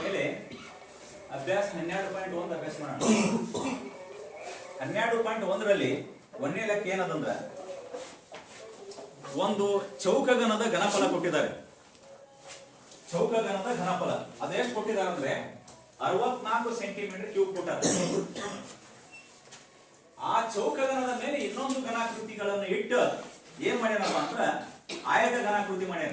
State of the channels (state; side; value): identical; both; correlation 1.00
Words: ಮೇಲೆ ಅಭ್ಯಾಸ 12.1 ಅಭ್ಯಾಸ ಮಾಡೋಣ. 12.1ರಲ್ಲಿ ಒಂದನೇ ಲೆಕ್ಕ ಏನದಂದ್ರ ಒಂದು ಚೌಕಗಣದ ಘನಫಲ ಕೊಟ್ಟಿದ್ದಾರೆ. ಚೌಕಗಣದ ಘನಫಲ ಅದೆಷ್ಟು ಕೊಟ್ಟಿದ್ದಾರೆ ಅಂದ್ರೆ 64 ಸೆಂಟಿಮೀಟರ್ ಕ್ಯೂಬ್ ಕೊಟ್ಟಾರೆ. ಆ ಚೌಕಗಣದ ಮೇಲೆ ಇನ್ನೊಂದು ಘನಾಕೃತಿಗಳನ್ನು ಇಟ್ಟು ಏನ್ ಮಾಡ್ಯಾನಪ್ಪ ಅಂದ್ರ ಆಯತ ಘನಾಕೃತಿ